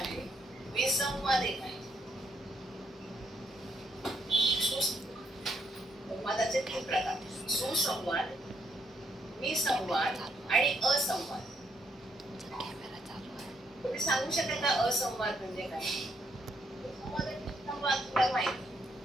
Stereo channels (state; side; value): normal; both; correlation 0.75